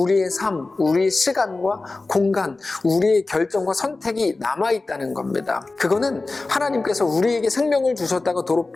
삶, 우리의 시간과 공간, 우리의 결정과 선택이 남아있다는 겁니다. 그거는 하나님께서 우리에게 생명을 주셨다고 도로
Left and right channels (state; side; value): quieter; right; 3.4 dB